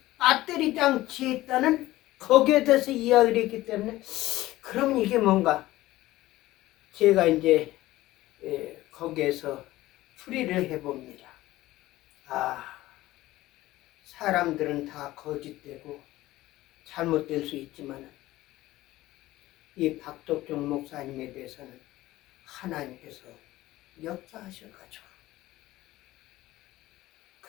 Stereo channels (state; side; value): quieter; right; 16.8 dB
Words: 배터리 장치 있다는 거기에 대해서 이야기를 했기 때문에, 그럼 이게 뭔가 제가 이제 거기에서 풀이를 해봅니다. 사람들은 다 거짓되고 잘못될 수 있지만 이 박덕종 목사님에 대해서는 하나님께서 역사하셔가지고